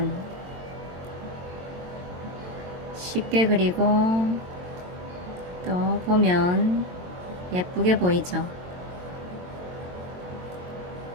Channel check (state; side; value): late; left; 22 ms